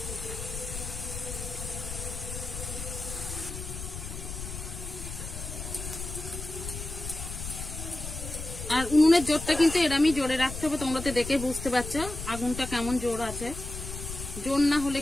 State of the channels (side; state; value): left; noise; rumble, 8 dB below the sound